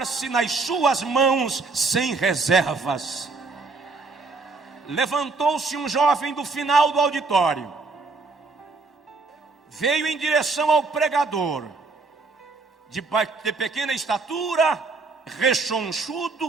nas suas mãos sem reservas. Levantou-se um jovem do final do auditório, veio em direção ao pregador, de pequena estatura,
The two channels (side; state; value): left; quieter; 4.0 dB